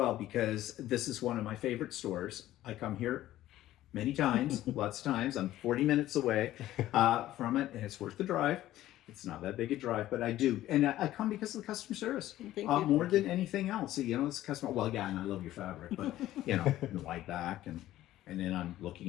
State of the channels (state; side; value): quieter; right; 14.3 dB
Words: because this is one of my favorite stores. I come here many times, lots of times. I'm 40 minutes away from it, and it's worth the drive. It's not that big a drive, but I do. And I come because of the customer service. Thank you. More than anything else. It's customer, well, yeah, and I love your fabric, but, the wide back. And then I'm